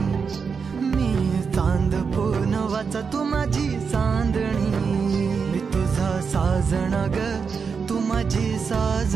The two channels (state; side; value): quieter; left; 5.7 dB